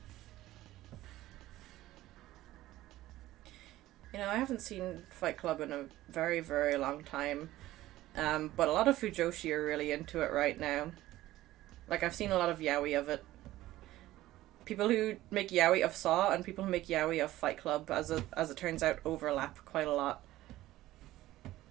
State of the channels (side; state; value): left; quieter; 15.8 dB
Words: You know, I haven't seen Fight Club in a very, very long time. But a lot of Fujoshi are really into it right now. Like, I've seen a lot of yaoi of it. People who make yaoi of Saw and people who make yaoi of Fight Club, as it turns out, overlap quite a lot.